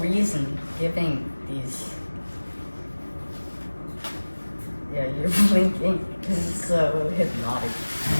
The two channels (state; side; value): inverted; both; correlation -1.00